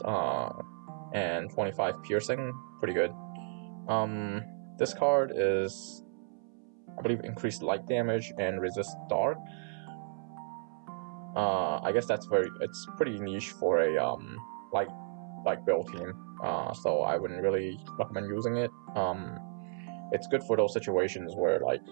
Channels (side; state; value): left; silent; 56 dB below the other